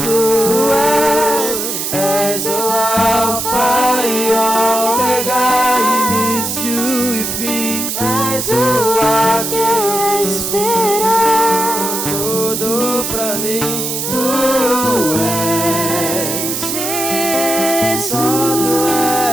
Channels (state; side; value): noise; right; hiss, 3 dB below the sound